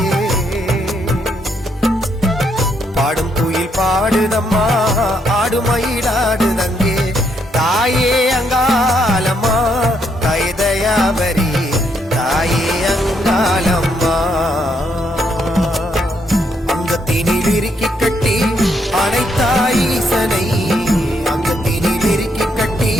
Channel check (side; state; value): both; normal; correlation 0.75